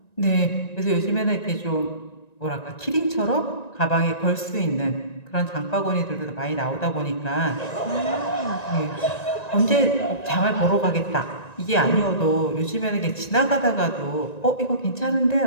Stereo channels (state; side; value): late; right; 1.9 ms